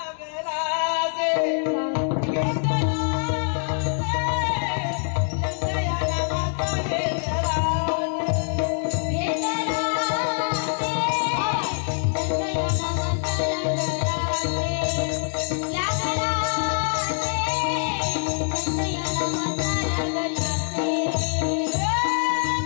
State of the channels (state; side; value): silent; right; 62 dB below the other